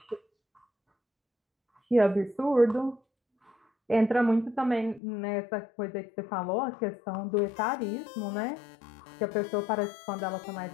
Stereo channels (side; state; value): right; drops out; at 5.0 s